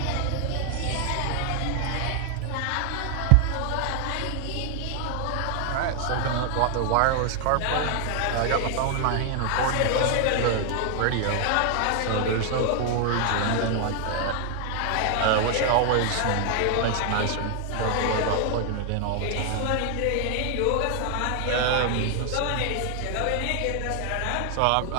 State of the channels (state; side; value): different; both; correlation 0.00